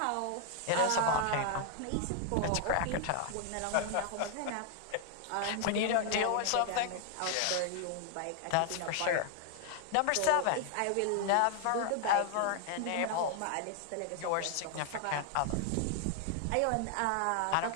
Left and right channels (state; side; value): different; both; correlation 0.00